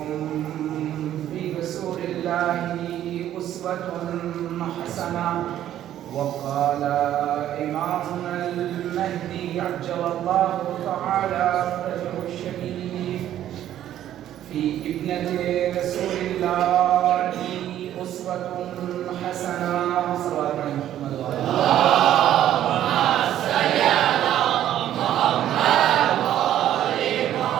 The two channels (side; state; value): left; quieter; 11.8 dB